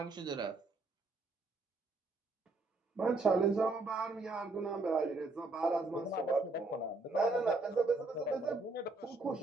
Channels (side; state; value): left; quieter; 3.3 dB